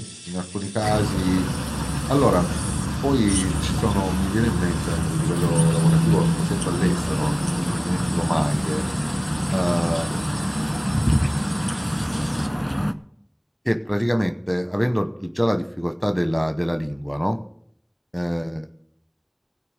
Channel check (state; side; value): identical; both; correlation 1.00